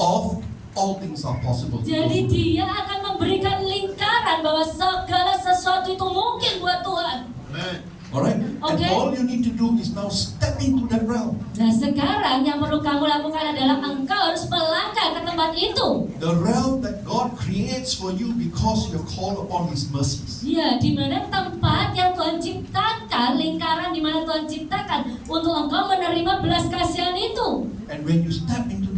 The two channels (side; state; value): both; identical; correlation 1.00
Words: all things are possible. jadi Dia akan memberikan lingkaran bahwa segala sesuatu itu mungkin buat Tuhan. Alright? Okay. And all you need to do is now step into that realm. Nah, sekarang yang perlu kamu lakukan adalah engkau harus melangkah ke tempat itu. The realm that God creates for you because you call upon His mercies. Ya, di mana tempat yang Tuhan ciptakan, lingkaran di mana Tuhan ciptakan untuk engkau menerima belas kasihan itu. And when you step into